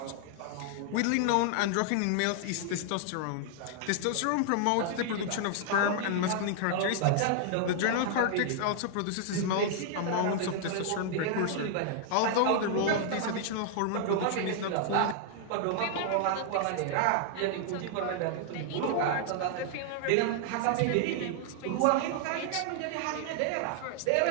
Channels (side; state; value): both; different; correlation 0.00